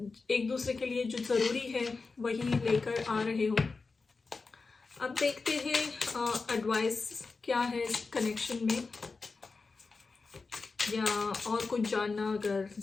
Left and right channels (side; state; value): right; quieter; 4.2 dB